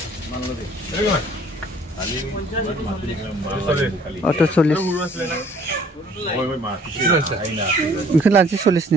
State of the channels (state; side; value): normal; both; correlation 0.56